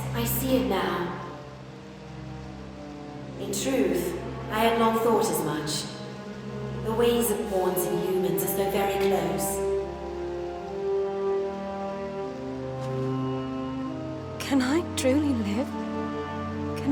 I see it now. In truth, I had long thought as much. The ways of pawns and humans are so very close. Can I truly live?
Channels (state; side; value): identical; both; correlation 1.00